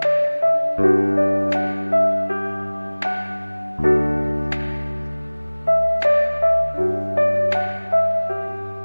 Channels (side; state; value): both; inverted; correlation -1.00